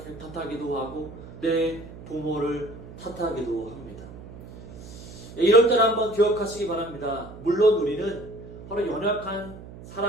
탓하기도 하고 내 부모를 탓하기도 합니다. 이럴 때는 한번 기억하시기 바랍니다. 물론 우리는 바로 연약한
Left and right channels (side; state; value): right; noise; hum, 15 dB below the sound